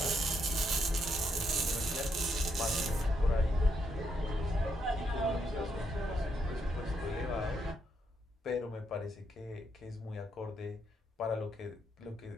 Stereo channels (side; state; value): both; normal; correlation 0.77